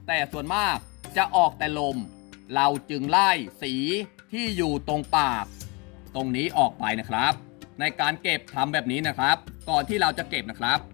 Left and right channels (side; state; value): right; quieter; 29.0 dB